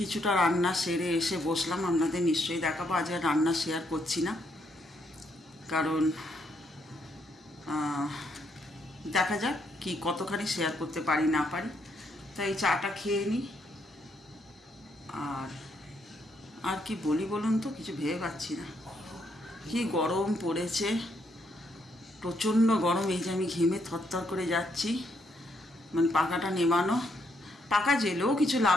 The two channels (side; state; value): both; normal; correlation 0.75